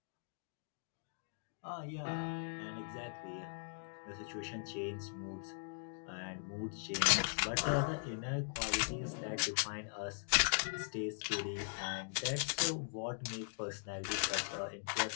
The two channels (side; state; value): right; silent; digital silence